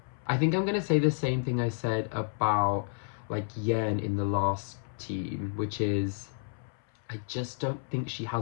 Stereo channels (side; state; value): right; silent; 57 dB below the other